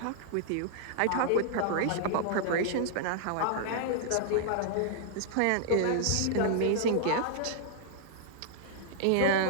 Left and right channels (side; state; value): both; different; correlation -0.01